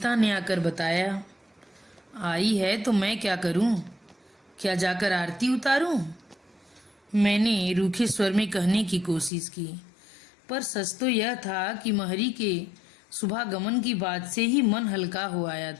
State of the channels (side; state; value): right; drops out; at 9.3 s